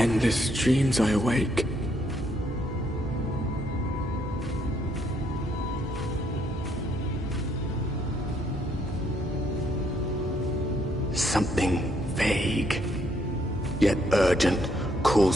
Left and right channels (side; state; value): both; normal; correlation 0.71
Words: dreams I awake. Something vague, yet urgent,